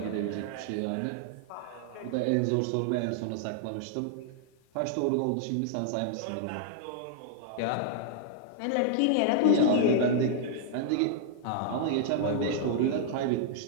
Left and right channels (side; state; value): both; different; correlation -0.01